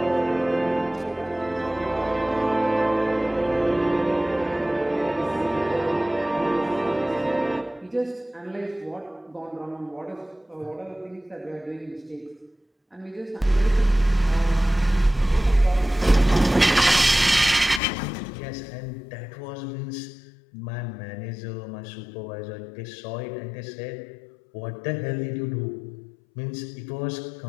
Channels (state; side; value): drops out; right; at 17.8 s